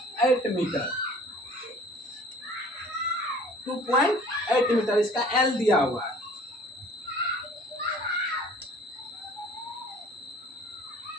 मीटर। 2.8 मीटर इसका L दिया हुआ है।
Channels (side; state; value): both; normal; correlation 0.50